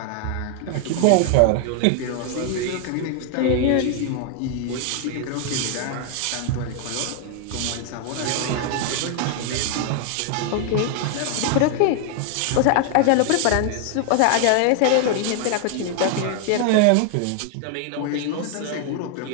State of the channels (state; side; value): different; both; correlation 0.00